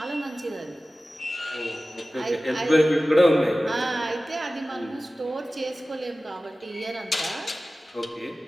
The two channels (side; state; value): both; normal; correlation 0.96